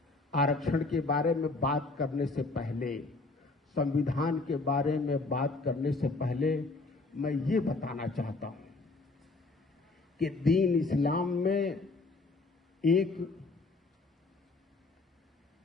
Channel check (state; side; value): quieter; right; 3.5 dB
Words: आरक्षण के बारे में बात करने से पहले, संविधान के बारे में बात करने से पहले मैं ये बताना चाहता हूं कि दीन इस्लाम में